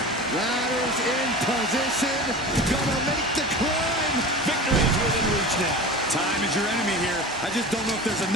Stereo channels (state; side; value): normal; both; correlation 0.33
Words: Ladders in position. Gonna make the climb. Victory is within reach now. Time is your enemy here. I just don't know if there's